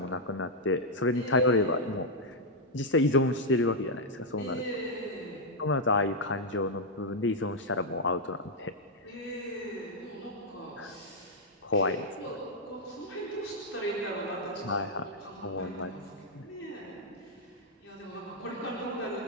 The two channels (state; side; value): normal; both; correlation -0.03